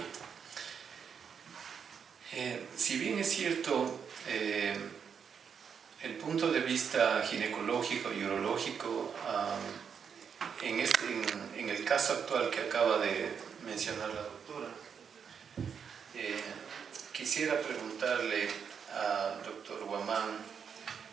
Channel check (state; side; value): quieter; left; 7.0 dB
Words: Si bien es cierto, el punto de vista ginecológico y urológico, en el caso actual que acaba de mencionar la doctora, quisiera preguntarle al doctor Guamán,